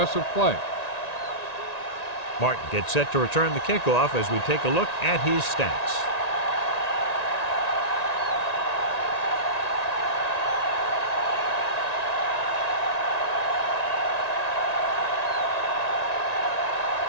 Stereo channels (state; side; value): late; right; 1.9 ms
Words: play. Martin gets set to return the kickoff as we take a look at his stats.